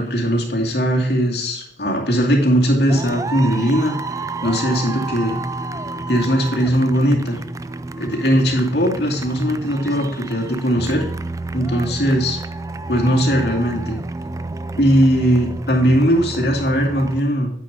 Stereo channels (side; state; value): both; normal; correlation 0.71